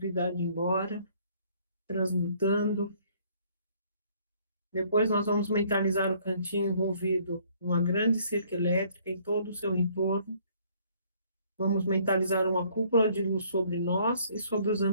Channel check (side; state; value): both; inverted; correlation -0.61